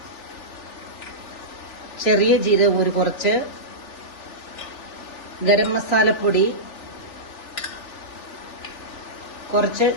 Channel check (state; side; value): late; right; 3.4 ms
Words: ചെറിയ ജീരകം ഒരു കുറച്ച്, ഗരം മസാലപ്പൊടി, കുറച്ച്